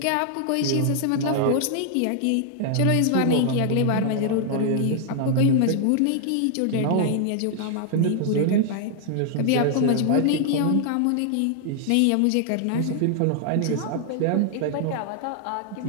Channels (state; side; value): different; both; correlation 0.00